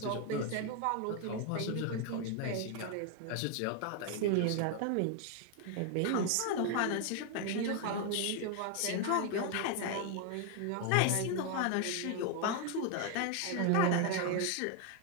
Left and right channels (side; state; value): both; different; correlation 0.00